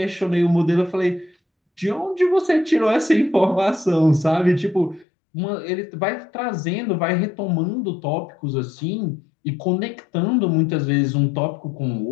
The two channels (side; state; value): right; drops out; at 5.1 s